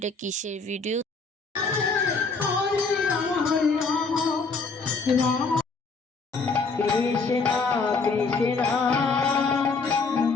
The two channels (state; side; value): quieter; right; 4.3 dB